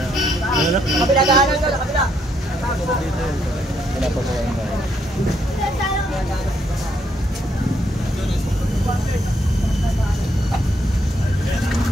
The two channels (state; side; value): normal; both; correlation 0.74